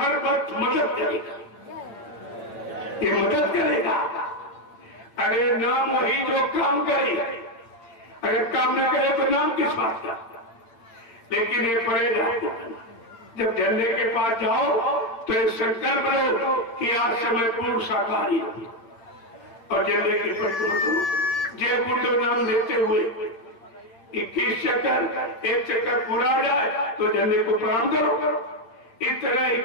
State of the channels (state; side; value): late; right; 8.7 ms